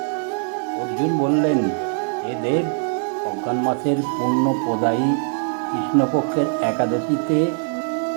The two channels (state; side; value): silent; left; 62 dB below the other